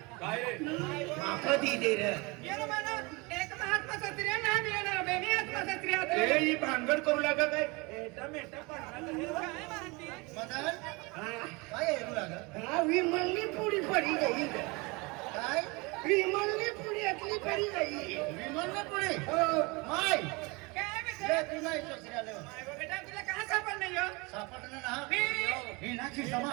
माफा दी दे रे एक महात्मा सत्रिया ना मिळणार बेनी आत्मा सत्रिया ए ही भांगड करू लागा काय काय म्हणते मदन काय येऊ लागा हा विमलनी पुडी पडी गई काय विमलनी पुडी अतली पडी गई विमान पुढे हो माय काय ले बेटा तुला इच्छा आले बेटा तुला कहाँ सापडलं यो सापडलं ना मी- ही नाची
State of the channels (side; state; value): left; quieter; 26.5 dB